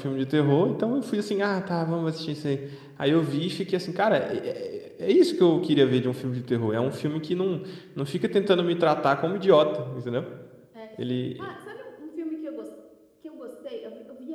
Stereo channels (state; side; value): identical; both; correlation 1.00